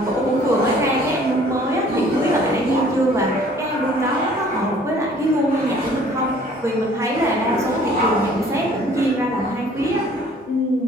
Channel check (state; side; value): normal; both; correlation 0.55